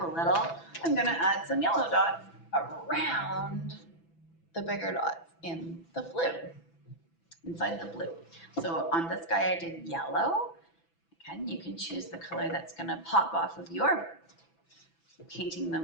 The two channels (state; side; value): late; right; 6.0 ms